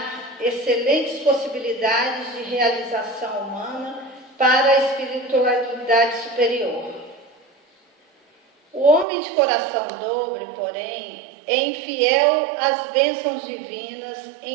excelentes possibilidades de realização humana para a espiritualidade superior. O homem de coração dobre, porém, é infiel às bênçãos divinas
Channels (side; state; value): left; drops out; at 9.1 s